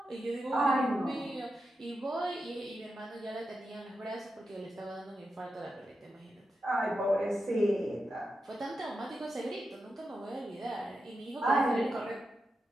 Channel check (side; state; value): both; normal; correlation 0.88